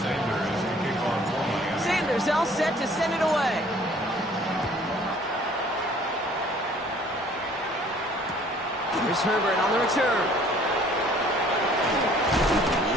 Sanders to kick off for Miami. Sanders all set to send it away. Here's Herbert on the return. He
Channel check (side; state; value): both; normal; correlation 0.55